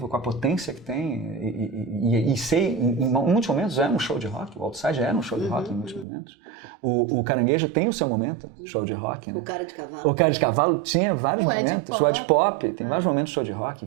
com a potência que tem, e ser, em muitos momentos, é um show de rock. O Outside era um show de rock em muitos momentos. O Caranguejo tem o seu momento, show de rock. Né? O Cara de Cavalo. O Cara de Cavalo tinha vários momentos. O Ed Pop tem vários momentos de show de rock,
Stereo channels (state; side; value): drops out; left; at 6.1 s